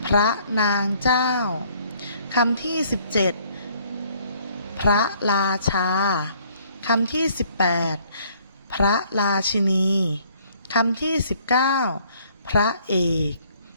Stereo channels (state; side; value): inverted; both; correlation -0.61